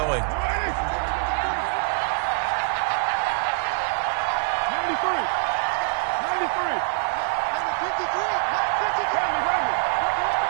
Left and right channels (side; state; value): left; silent; digital silence